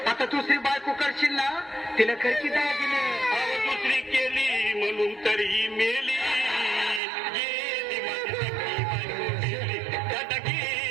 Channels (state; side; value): drops out; left; at 7.0 s